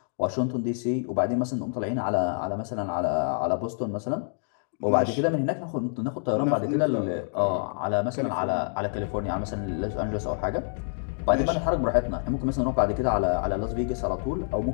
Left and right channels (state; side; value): silent; right; digital silence